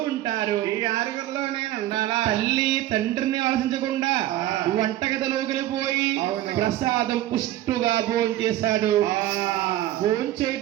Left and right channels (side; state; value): left; quieter; 14.1 dB